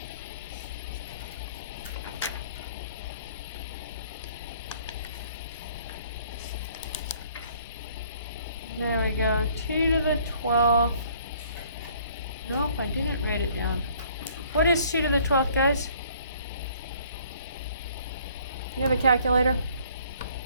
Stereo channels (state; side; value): inverted; both; correlation -0.59